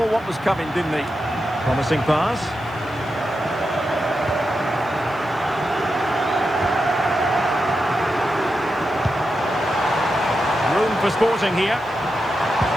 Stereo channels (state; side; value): noise; left; hiss, 29 dB below the sound